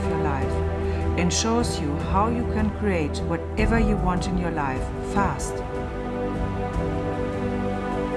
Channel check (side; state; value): both; identical; correlation 1.00